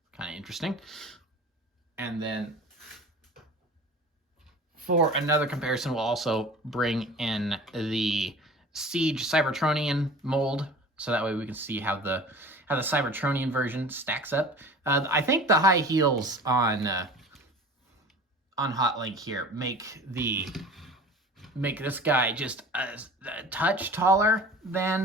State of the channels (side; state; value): both; normal; correlation 0.40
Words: kind of interesting. And then for another comparison, we'll also bring in the Siege Cybertronian mold, so that way we can see how the Cybertronian version stacks up. I think the high heels on Hotlink here make this guy just a touch taller